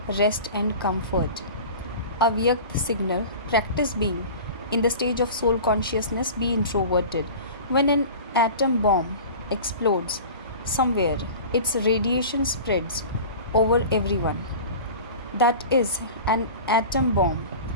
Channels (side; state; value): both; inverted; correlation -0.36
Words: rest and comfort. Avyakt signal: practice being in the stage of soul consciousness, be introverted. When an atom bomb explodes somewhere, its radiation spreads over everyone. That is an atom bomb,